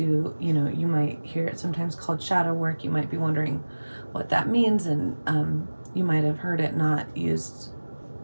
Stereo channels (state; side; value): inverted; both; correlation -1.00